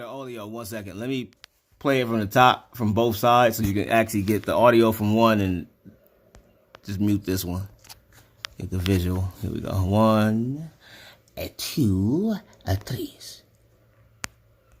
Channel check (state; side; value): identical; both; correlation 1.00